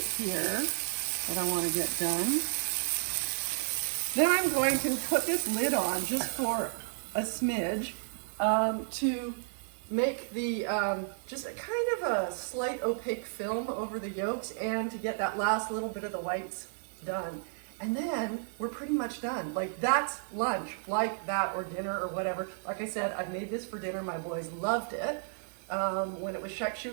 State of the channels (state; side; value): silent; left; digital silence